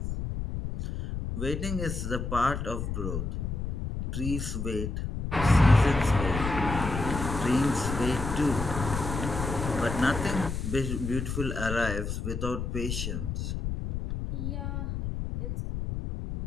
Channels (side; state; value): left; noise; rumble, 4 dB below the sound